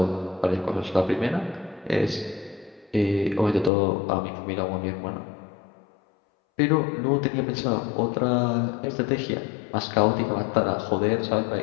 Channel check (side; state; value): right; drops out; at 3.7 s